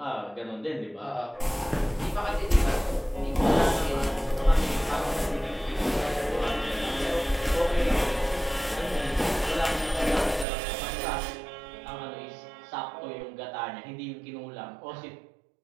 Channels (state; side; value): drops out; left; at 10.5 s